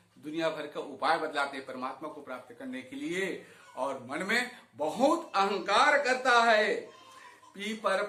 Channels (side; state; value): both; identical; correlation 1.00